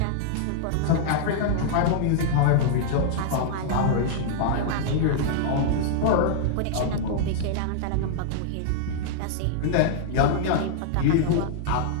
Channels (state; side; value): different; both; correlation -0.01